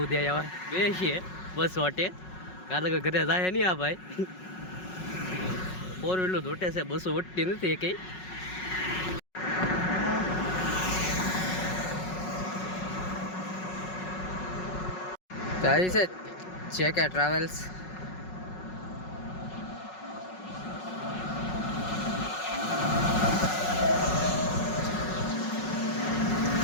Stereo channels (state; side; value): late; right; 5.4 ms